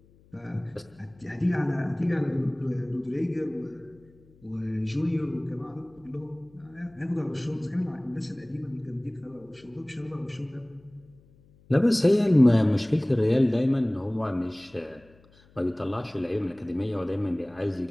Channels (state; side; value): noise; left; hum, 28 dB below the sound